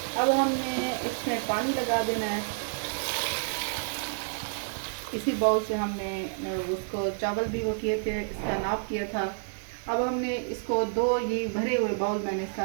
अब हमने इसमें पानी लगा देना है। इसी बाउल से हमने उसको चावल भी वो किए थे, इसका नाप किया था। अब हमने इसको 2 ये भरे हुए बाउल, मैंने इसका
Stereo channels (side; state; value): left; silent; 56 dB below the other